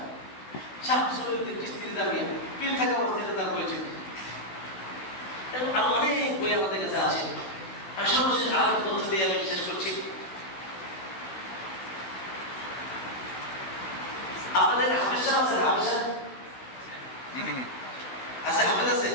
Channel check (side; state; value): right; late; 16 ms